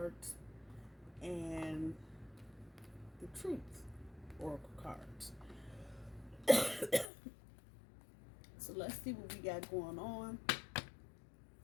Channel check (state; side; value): drops out; right; at 7.1 s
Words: and the truth oracle cards. So let's see what we got going on.